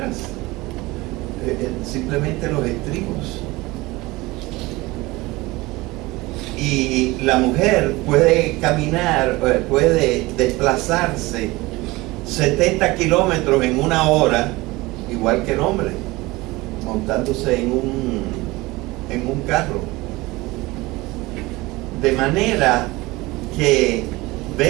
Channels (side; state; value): left; quieter; 21.2 dB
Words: simplemente los estribos. Y la mujer puede caminar, puede desplazarse 70 kilómetros en una hora, igual que el hombre, montándose en un carro. De manera que